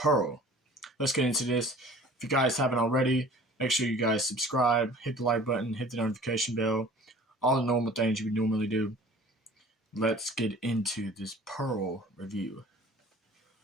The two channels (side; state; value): both; normal; correlation 0.47